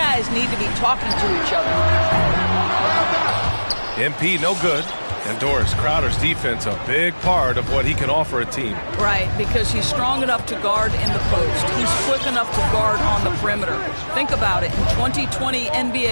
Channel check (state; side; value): inverted; both; correlation -1.00